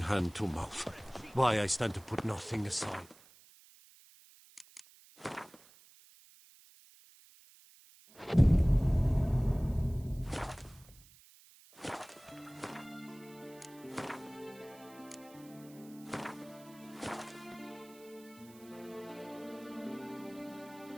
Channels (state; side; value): noise; right; hiss, 24 dB below the sound